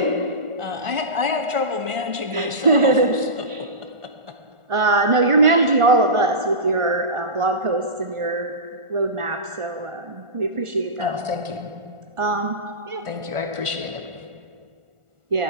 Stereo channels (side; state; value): left; late; 1.4 ms